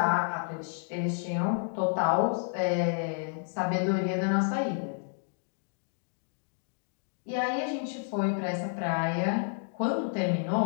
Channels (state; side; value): silent; right; 58 dB below the other